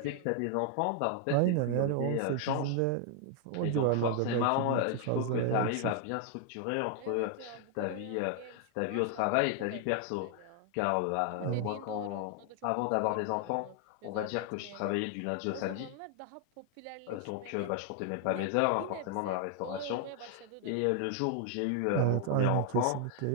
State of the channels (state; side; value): different; both; correlation 0.00